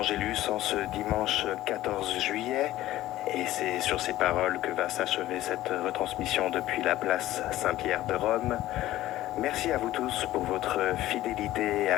en ce dimanche 14 juillet. Et c'est sur ces paroles que va s'achever cette retransmission depuis la place Saint-Pierre de Rome. Merci à vous tous pour votre fidélité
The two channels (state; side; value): quieter; right; 15.3 dB